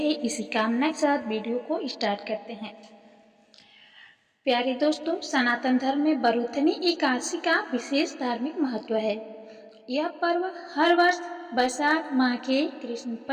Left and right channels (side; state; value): both; identical; correlation 1.00